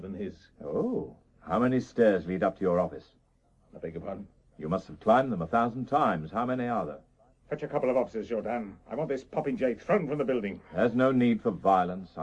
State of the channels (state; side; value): identical; both; correlation 1.00